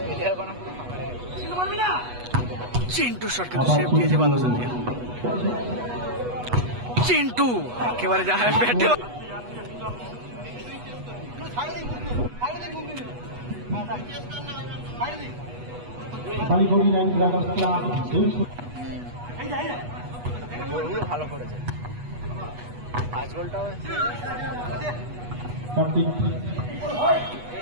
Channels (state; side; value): late; left; 8.2 ms